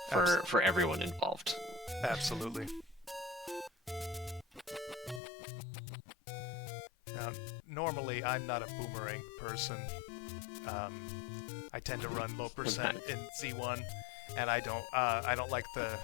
for everyone involved. Absolutely. Now, normally I'm not a boomerang person. I tend to run low percent in Z1, and I don't like the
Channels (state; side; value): drops out; right; at 5.2 s